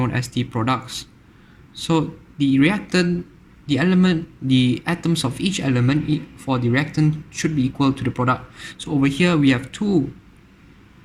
as the products. So the atoms of each element for the reactant should be equal to the product. So over here we have two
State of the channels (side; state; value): both; identical; correlation 1.00